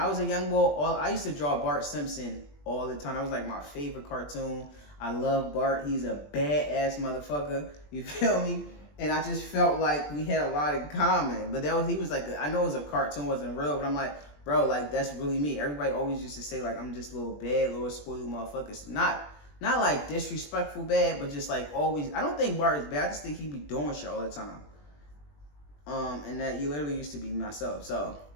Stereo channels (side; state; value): right; late; 20 ms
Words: was a young boy, I used to draw Bart Simpson all the time. That was like my favorite cartoon. I love Bart. He's a badass motherfucker. You feel me? And I just felt like we had a lot in common. But he was like, I know it was a cartoon, wasn't real, but I'm like, bro, like, that's really me. Everybody always used to say, like, I'm just little bad, little spoiled motherfuckers. Not like disrespectful bad, but just like always. I don't think Bart is bad. I just think he be doing shit all the time. And that you literally used to be myself. So